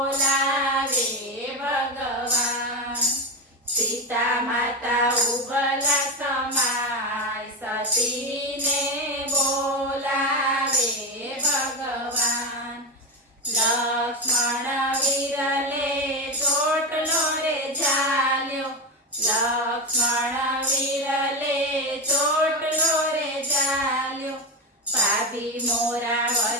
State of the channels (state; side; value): normal; both; correlation 0.16